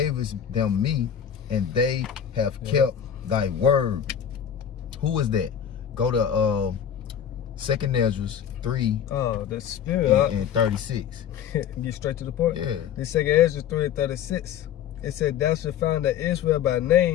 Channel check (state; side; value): quieter; right; 8.9 dB